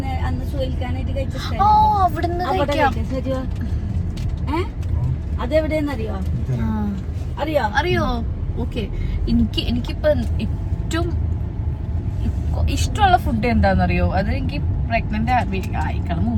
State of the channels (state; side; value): identical; both; correlation 1.00